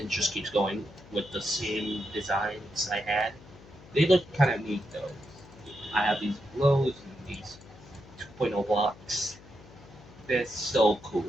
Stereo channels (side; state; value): left; noise; hum, 21 dB below the sound